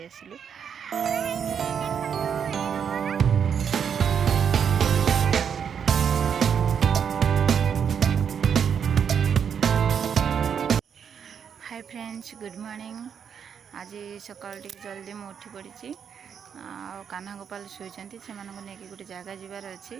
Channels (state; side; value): quieter; left; 7.5 dB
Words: आसिलु। Hi friends, good morning. आज सकाल जल्दी मुझे उठी पड़ी कान्हा गोपाल शुईचंती से गोटे जगह जीवार अच्छी